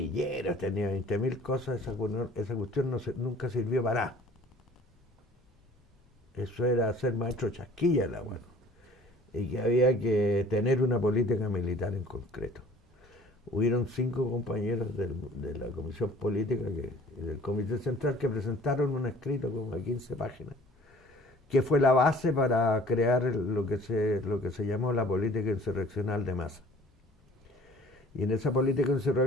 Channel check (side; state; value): both; normal; correlation 0.51